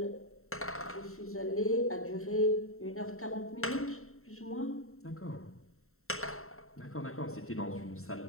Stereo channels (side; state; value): right; late; 0.63 ms